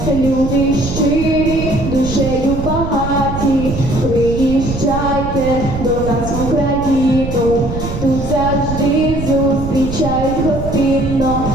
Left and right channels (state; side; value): noise; right; rumble, 6 dB below the sound